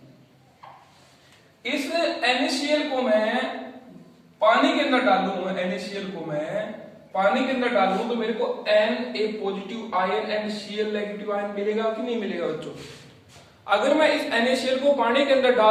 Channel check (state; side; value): identical; both; correlation 1.00